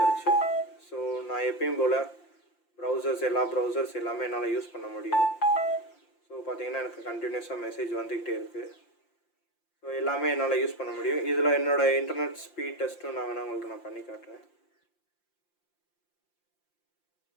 ஸோ நான் எப்பயும் போல் எல்லா ப்ரௌசர்ஸ் எல்லாமே என்னால் யூஸ் பண்ண முடியும். ஸோ பார்த்தீங்கன்னா எனக்கு கண்டினியூஸாக மெசேஜ் வந்துக்கிட்டே இருக்குது. ஸோ எல்லாமே என்னால் யூஸ் பண்ண முடியும். இதில் என்னோடய இன்டர்நெட் ஸ்பீட் டெஸ்ட்டும் நான் வேணால் உங்களுக்கு நான் பண்ணி காட்டுறேன்.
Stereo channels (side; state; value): right; late; 5.7 ms